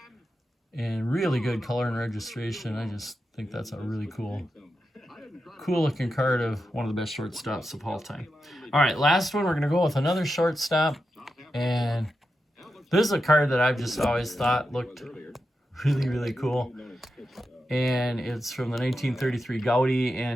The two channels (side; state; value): both; normal; correlation 0.88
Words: and really good color and registration. I just think that's a really cool looking card of one of the best shortstops of all time. All right, last one, we're going to go with another shortstop. And this is a card that I've just always thought looked really, really cool. And it's from the 1933 Gaudy.